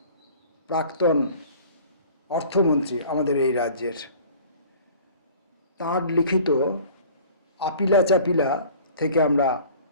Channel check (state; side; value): inverted; both; correlation -0.47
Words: প্রাক্তন অর্থমন্ত্রী আমাদের এই রাজ্যের। তাঁর লিখিত আপিলা চাপিলা থেকে আমরা